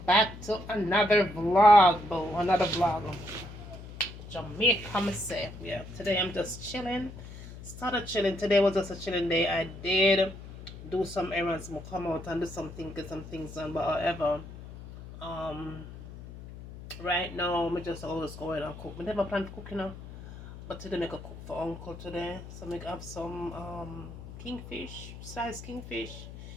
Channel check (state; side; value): noise; left; hum, 13 dB below the sound